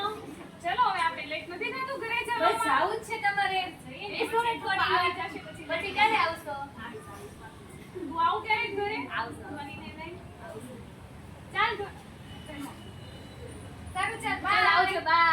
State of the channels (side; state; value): both; identical; correlation 1.00